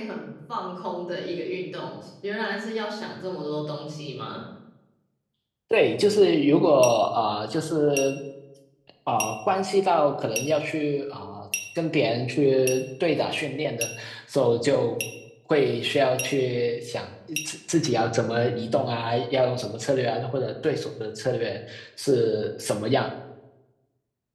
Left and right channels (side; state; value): both; identical; correlation 1.00